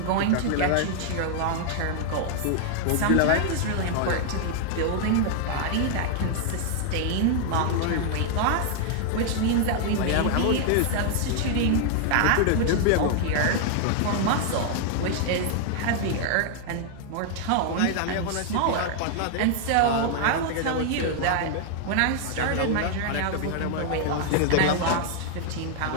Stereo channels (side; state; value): both; different; correlation 0.00